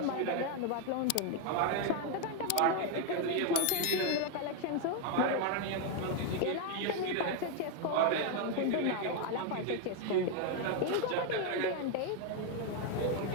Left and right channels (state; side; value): different; both; correlation 0.01